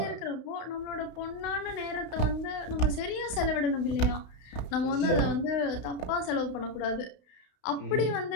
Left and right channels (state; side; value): late; right; 32 ms